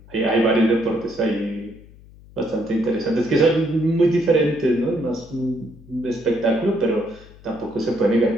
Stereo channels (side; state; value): left; noise; hum, 22 dB below the sound